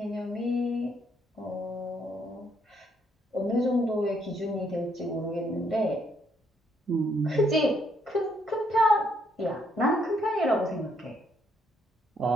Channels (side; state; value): both; normal; correlation 0.71